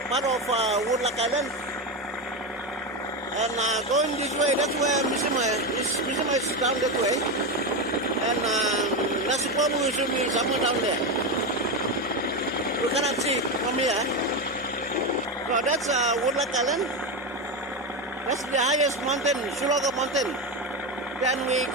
part of Woodlark Island. And going this way, that's where Mishima is. Mishima is down that way. And Nasiporu should be somewhere down there. We cannot see from here. So that's Woodlark Island. That's the highest mountain, Sulaga Mountain. Then we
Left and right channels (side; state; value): both; normal; correlation 0.14